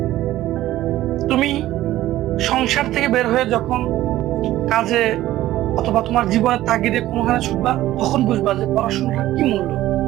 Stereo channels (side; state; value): left; quieter; 14.8 dB